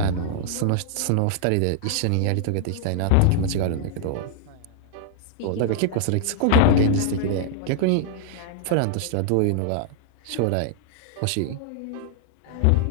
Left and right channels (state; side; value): different; both; correlation -0.01